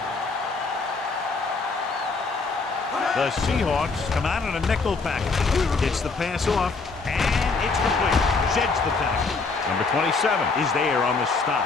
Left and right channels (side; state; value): right; quieter; 4.2 dB